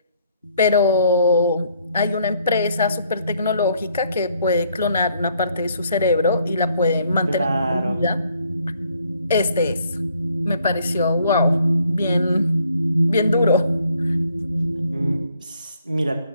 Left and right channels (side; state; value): both; inverted; correlation -0.66